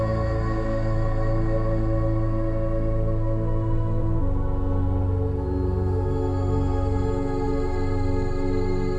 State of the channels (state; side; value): identical; both; correlation 1.00